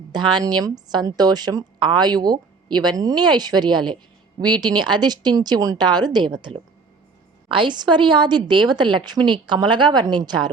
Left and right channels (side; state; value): left; quieter; 4.5 dB